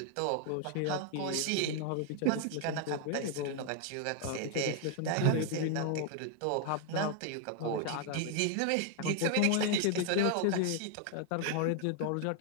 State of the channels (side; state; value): both; different; correlation 0.00